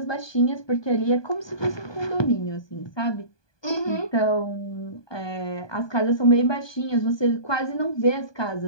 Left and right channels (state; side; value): late; right; 1.2 ms